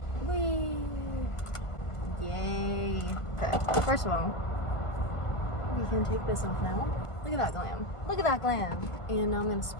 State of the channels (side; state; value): right; late; 1.5 ms